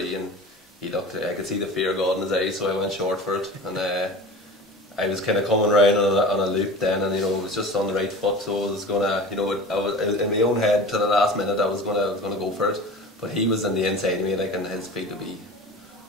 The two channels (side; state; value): both; normal; correlation 0.36